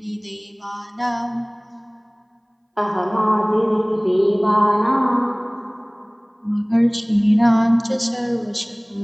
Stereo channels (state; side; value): identical; both; correlation 1.00